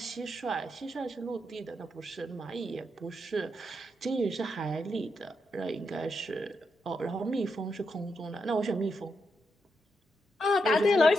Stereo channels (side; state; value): both; normal; correlation 0.83